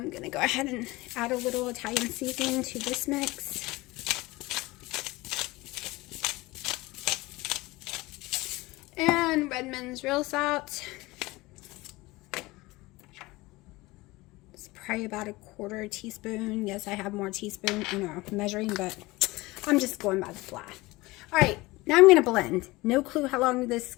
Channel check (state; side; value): quieter; right; 21.1 dB